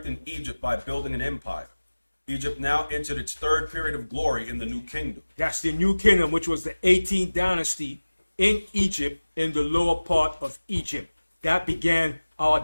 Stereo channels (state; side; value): inverted; both; correlation -1.00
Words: Egypt by building an empire. Egypt now entered its third period of glory in the New Kingdom. That's the New Kingdom, which was the 18th dynasty in Egypt, in the lower part of Egypt. That began